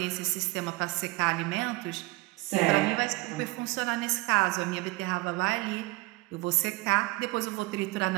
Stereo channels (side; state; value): left; quieter; 22.1 dB